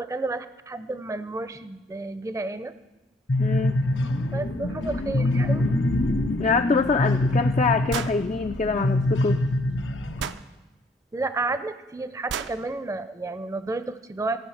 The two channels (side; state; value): both; normal; correlation 0.64